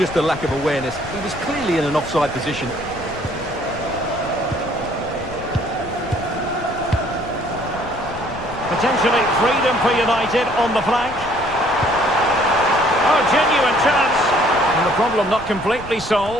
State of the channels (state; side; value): noise; left; rumble, 15 dB below the sound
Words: a lack of awareness. He was clearly in an offside position. Potentially freedom for United on the flank. Oh, genuine chance. And the problem not completely